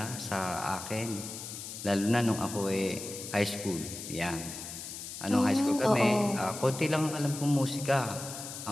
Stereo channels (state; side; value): noise; left; hiss, 9 dB below the sound